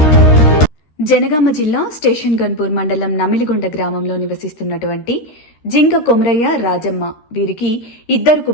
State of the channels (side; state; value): right; late; 13 ms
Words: జనగామ జిల్లా స్టేషన్ గన్పూర్ మండలం నమిలిగొండ గ్రామంలో నివసిస్తున్నటువంటి జింక కొమరయ్య, రాజమ్మ వీరికి 2